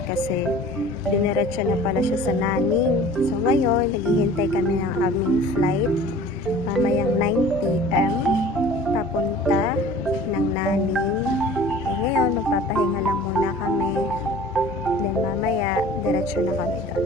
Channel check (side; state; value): both; normal; correlation 0.45